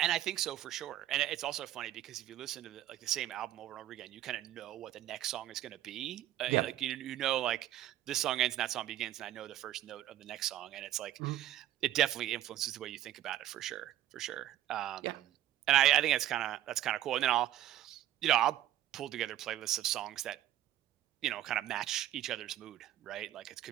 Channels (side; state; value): left; quieter; 13.1 dB